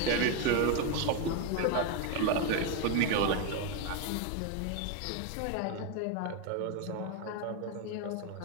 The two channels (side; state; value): both; different; correlation 0.01